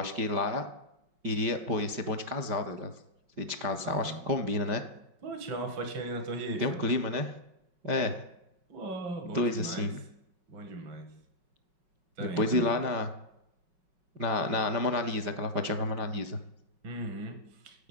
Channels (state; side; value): late; left; 5.4 ms